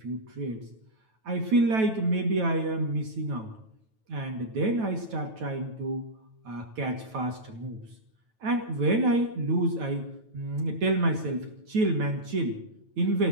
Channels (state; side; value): late; left; 9.1 ms